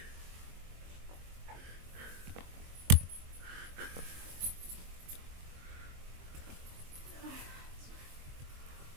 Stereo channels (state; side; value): late; left; 22 ms